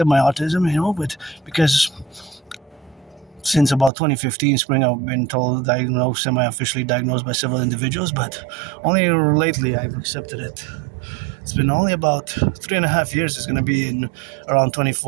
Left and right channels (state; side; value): drops out; left; at 3.9 s